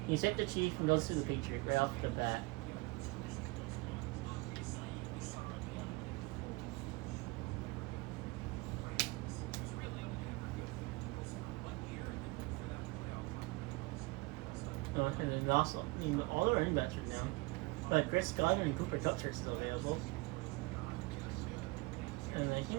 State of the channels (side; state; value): left; quieter; 24.6 dB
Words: he sipped the Chief, and goes to the Patriots right off the bat. And then also, all the running backs are down. But Chris Godwin and Cooper Kupp are still available. And I